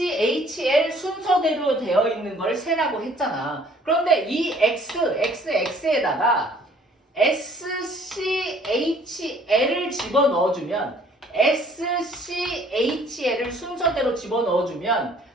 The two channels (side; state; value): both; normal; correlation 0.57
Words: 순서대로 되어 있는 걸 세라고 했잖아. 그런데 이 XXX에다가 SCHL을 집어넣어주면 SCHL을 순서대로 집어넣어주면